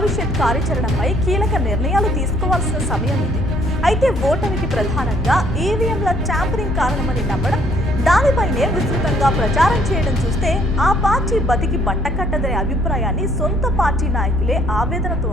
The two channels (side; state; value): both; normal; correlation 0.64